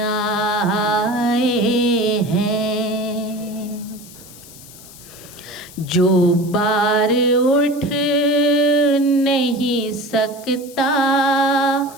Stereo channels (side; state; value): left; noise; hiss, 19 dB below the sound